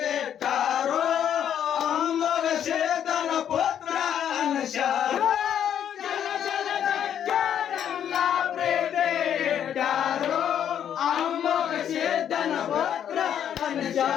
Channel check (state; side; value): quieter; right; 9.5 dB